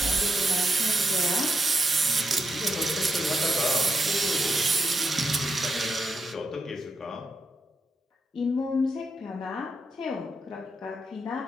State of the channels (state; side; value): normal; both; correlation 0.84